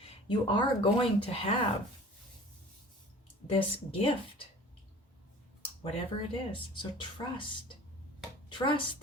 You are going to have this gift, whatever it is. So trust. Trust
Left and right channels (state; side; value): normal; both; correlation 0.44